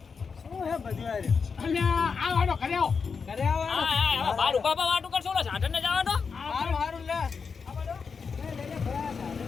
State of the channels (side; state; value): right; quieter; 5.5 dB